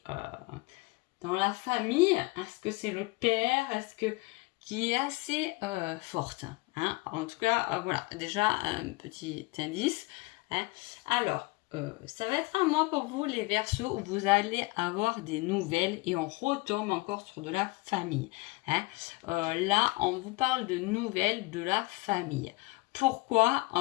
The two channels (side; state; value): right; quieter; 23.5 dB